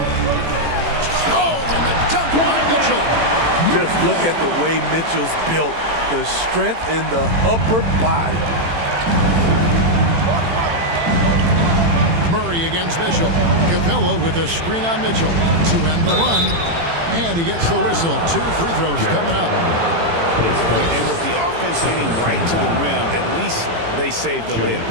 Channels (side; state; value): left; late; 18 ms